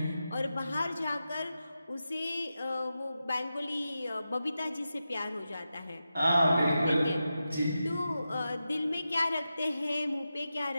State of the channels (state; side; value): inverted; both; correlation -0.90